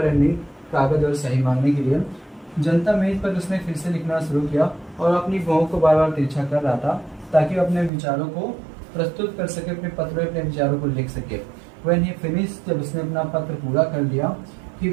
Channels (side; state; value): left; drops out; at 7.9 s